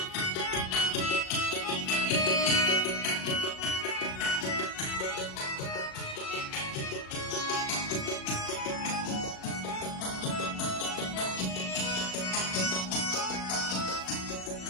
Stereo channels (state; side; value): late; right; 37 ms